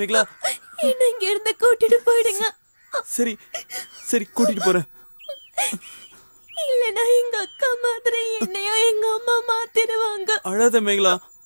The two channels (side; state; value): both; inverted; correlation -1.00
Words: என்ன இங்க இருந்து கூட்டிட்டு போயிடுங்க. சரி சரி கூட்டிட்டு போறேன். இல்லனா எங்க அக்கா மாதிரி என்னையோ எங்க அம்மா மாத்திடுவாங்க. அழாத மேகலா.